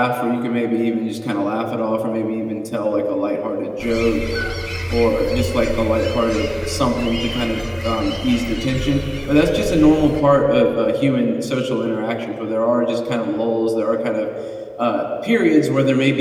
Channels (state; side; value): identical; both; correlation 1.00